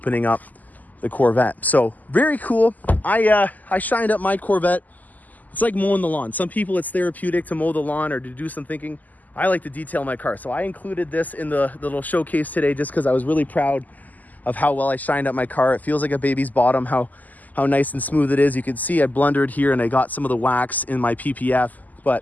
up the Corvette. So very cool. I shined up my Corvette. It's like mowing the lawn. Some people it's therapeutic to mow the lawn or to do some thinking. I like to detail my car. So I included this in the little showcase today just because I was really proud of how well I shined up my car. It feels like a baby's bottom, how nice and smooth it is. You can see I blundered here and I got some of the wax in my PPF,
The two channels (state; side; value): late; right; 0.081 ms